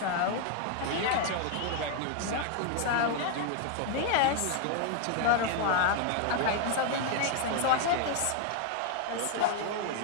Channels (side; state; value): both; different; correlation 0.00